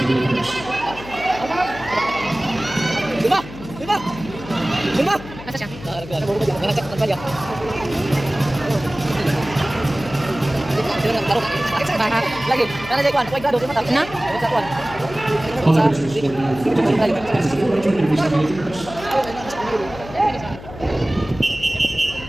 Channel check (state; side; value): noise; left; hum, 14 dB below the sound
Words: is the first. Lima! Lima! Lima! Asa siya? Nangasak ng palya. Lagi. Nana jay kwan. Kuway grado. Lima tapos. Na? Sa kwan. All the rest is for now. This is the fourth joint of the first.